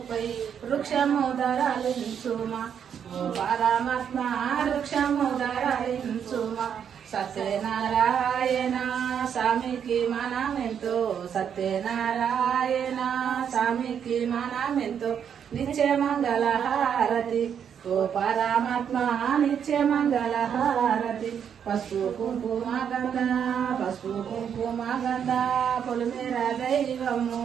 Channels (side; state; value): left; quieter; 8.1 dB